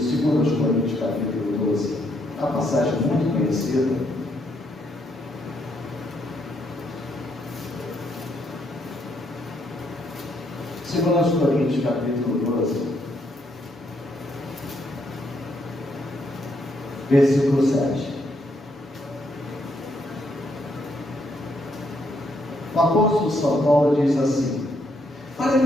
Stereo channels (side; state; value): both; normal; correlation 0.74